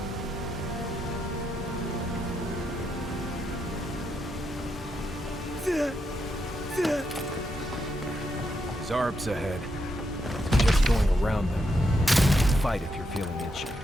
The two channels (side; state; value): both; normal; correlation 0.82